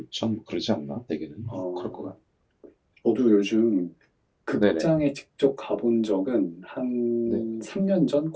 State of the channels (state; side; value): identical; both; correlation 1.00